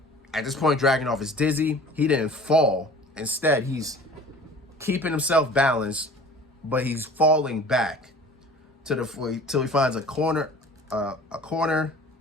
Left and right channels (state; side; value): normal; both; correlation 0.45